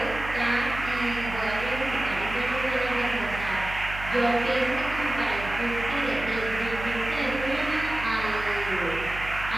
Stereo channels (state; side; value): noise; right; hum, 10 dB below the sound